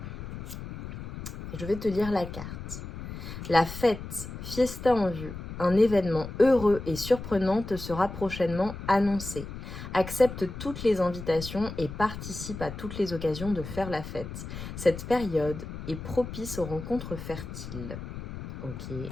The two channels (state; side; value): noise; left; rumble, 9 dB below the sound